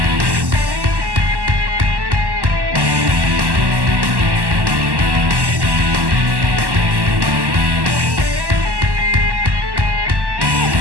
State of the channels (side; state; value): left; late; 1.1 ms